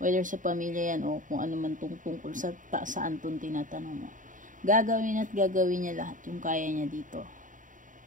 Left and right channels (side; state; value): left; late; 0.38 ms